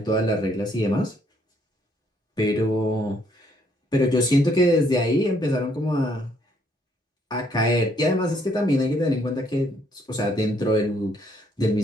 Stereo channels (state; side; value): normal; both; correlation 0.68